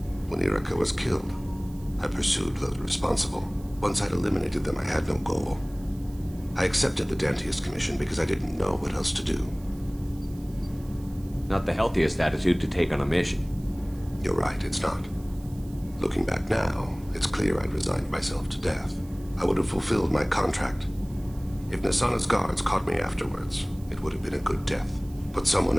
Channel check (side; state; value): right; noise; hiss, 25 dB below the sound